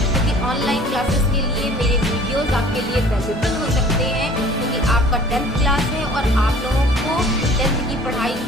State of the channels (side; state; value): both; normal; correlation 0.49